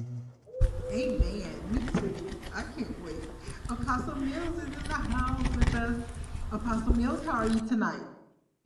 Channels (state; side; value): identical; both; correlation 1.00